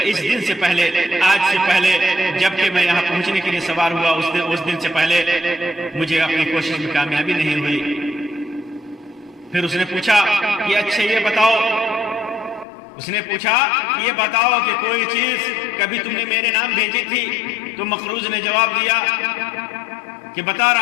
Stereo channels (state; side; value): drops out; right; at 12.7 s